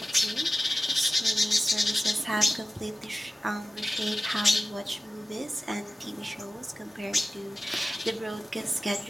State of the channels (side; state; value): both; normal; correlation 0.96